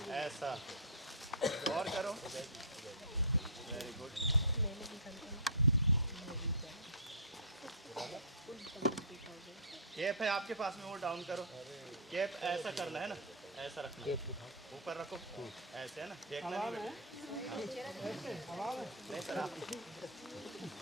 ऐसा, और करो। Very good. कैप है आपके पास में, वो डाउन करो। कैप ऐसा करना है ना, ऐसा रखना, ऊपर रखो ऐसे, है ना। देखना नहीं बेटा, नहीं सर आप,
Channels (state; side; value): normal; both; correlation -0.18